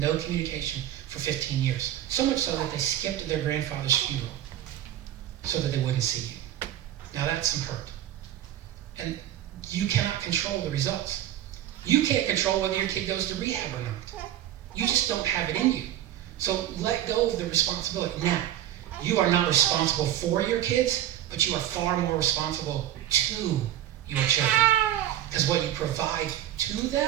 communication for 15 years. So much so that they skipped their grandfather's funeral so that they wouldn't see you. Now that's some hurt. And you cannot control the results. You can't control whether your kid goes to rehab or not. You just don't have it in you. So let go of the responsibility. Now, you are not responsible for your kids, but you are far more responsible to your children. Because what you provide to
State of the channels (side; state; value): left; quieter; 12.4 dB